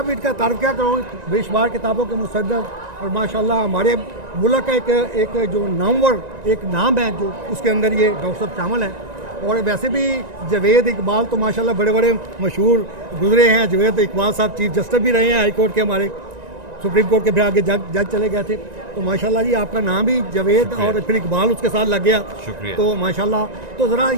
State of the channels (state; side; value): late; left; 1.9 ms